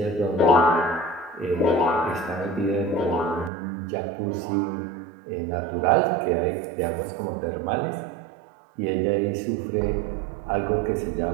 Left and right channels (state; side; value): drops out; left; at 3.5 s